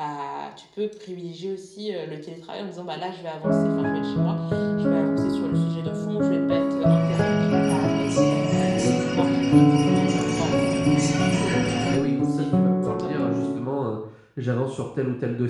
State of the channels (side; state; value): both; identical; correlation 1.00